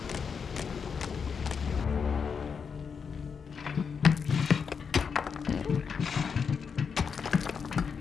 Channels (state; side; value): quieter; right; 6.1 dB